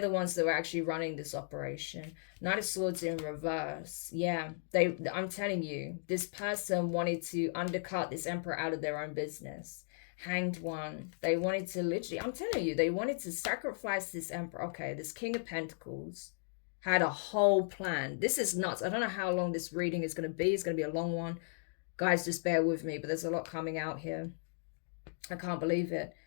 ones that were actually running this operation. Knight of Swords in reverse. Yeah, I'm telling you, this person wanted to undercut this Emperor out of their own business. Hanged One. They wanted to literally, I'm telling you, they wanted to sacrifice this Emperor. Okay, this King of Pentacles had a whole plan. This is nuts. I don't know how long this reading is going to be. It's going to be a long one. Guys, just bear with me, but there's a lot coming out here. I can't believe it.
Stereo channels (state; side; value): silent; right; digital silence